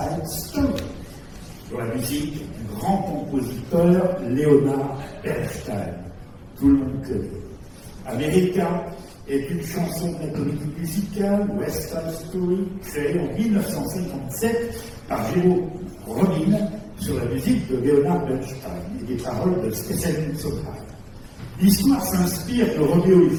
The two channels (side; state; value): both; identical; correlation 1.00